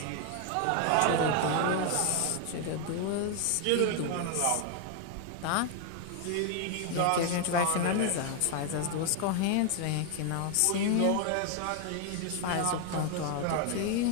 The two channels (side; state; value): both; different; correlation 0.00